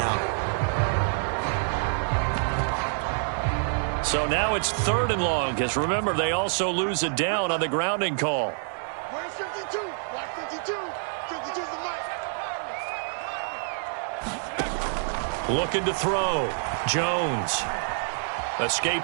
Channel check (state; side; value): silent; left; 58 dB below the other